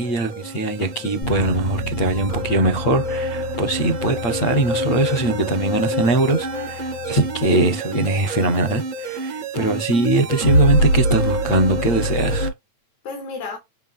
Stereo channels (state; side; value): late; right; 8.8 ms